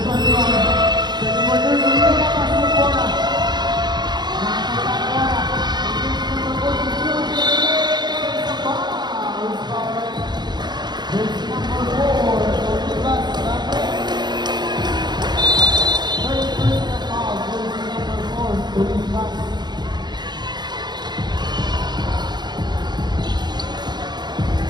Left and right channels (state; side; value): late; left; 0.21 ms